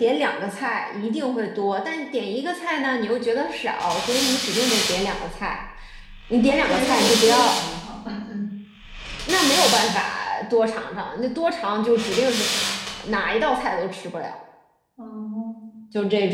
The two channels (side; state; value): both; identical; correlation 1.00